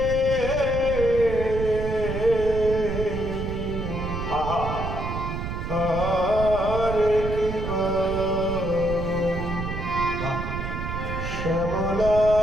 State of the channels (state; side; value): noise; right; rumble, 5 dB below the sound